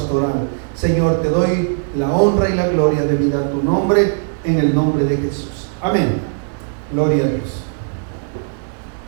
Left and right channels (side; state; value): left; silent; digital silence